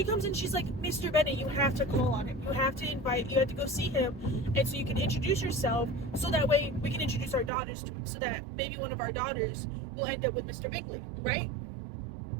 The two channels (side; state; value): left; drops out; at 7.5 s